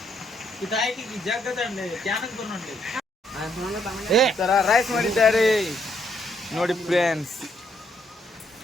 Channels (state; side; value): normal; both; correlation 0.72